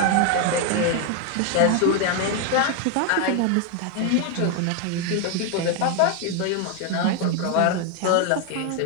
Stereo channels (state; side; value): different; both; correlation 0.01